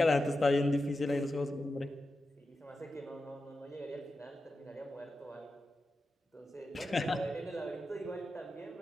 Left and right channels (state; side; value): normal; both; correlation 0.91